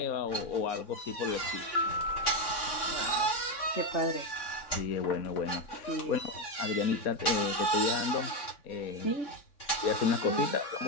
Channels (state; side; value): late; right; 3.6 ms